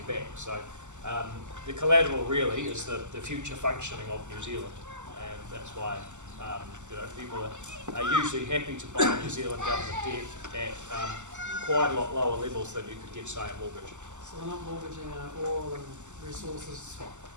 back. So the collateral really is the future functioning of New Zealand, and that's why people are usually happy to buy New Zealand government debt at quite a lot lower levels than you could get, say, a mortgage. So we're not mortgaging oil and resources.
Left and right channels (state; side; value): late; left; 0.84 ms